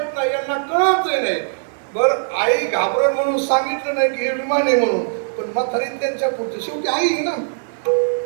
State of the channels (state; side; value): silent; left; digital silence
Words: नाही, यांना कळत नाही. बरं, आई घाबरण म्हणून सांगितलं नाही की हे विमान आहे म्हणून, पण म्हातारी त्यांच्या पुढचं, शेवटी आई आहे ना.